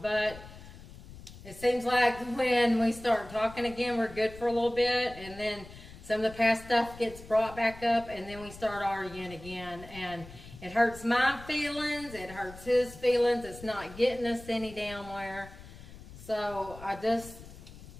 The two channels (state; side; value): noise; left; rumble, 17 dB below the sound